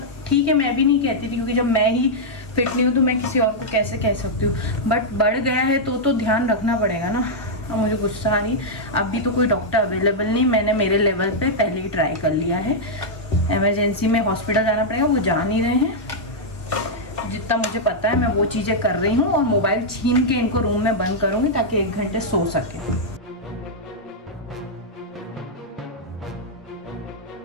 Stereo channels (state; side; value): normal; both; correlation -0.05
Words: ठीक है, मैं भी नहीं कहती थी क्योंकि जब मैं ही फिट नहीं हूँ तो मैं किसी और को कैसे कह सकती हूँ। बट बढ़ गया है तो ध्यान रखना पड़ेगा ना। अब मुझे गुस्सा आ रही, अभी तो कोई डॉक्टर अवेलेबल नहीं, मैंने मेरे लेवल पे पहले ही ट्राई कर लिया है। इमरजेंसी में हॉस्पिटल जाना पड़ेगा, वो जा नहीं रहे हैं। जितना मुझे पता है मैं वो चीज़ें कर रही हूँ, और मोबाइल छीन के इनको रूम में बंद करूँगी ताकि 1 घंटे सो सके।